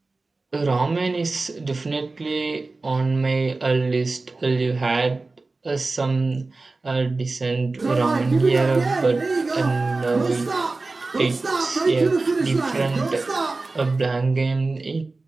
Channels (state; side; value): quieter; left; 3.5 dB